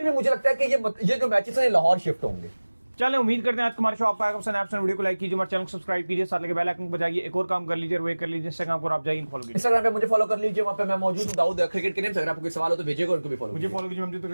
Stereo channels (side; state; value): both; inverted; correlation -1.00